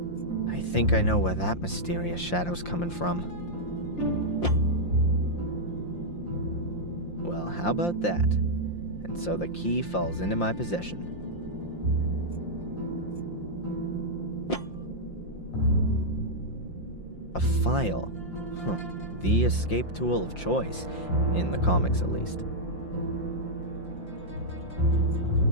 I think I know where that mysterious shadow's coming from. Well, how about that? And so the key falls into my possession. A file. The escape tool of choice, in the comics at least.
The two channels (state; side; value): late; right; 5.8 ms